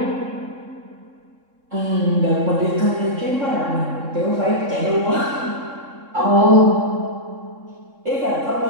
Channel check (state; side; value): late; left; 3.7 ms